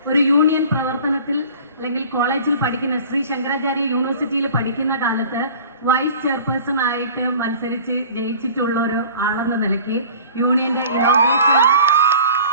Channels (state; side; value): inverted; both; correlation -0.44